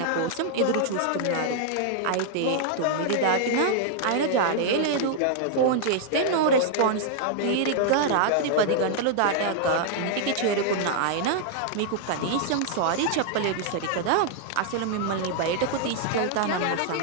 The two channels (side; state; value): both; different; correlation -0.01